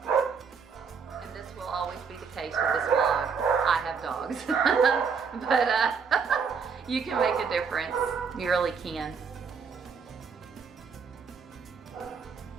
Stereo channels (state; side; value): quieter; left; 5.9 dB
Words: And this will always be the case with this vlog. I have dogs. But you can make a difference. You really can.